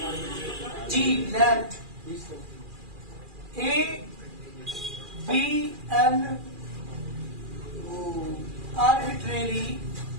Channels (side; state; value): left; late; 2.4 ms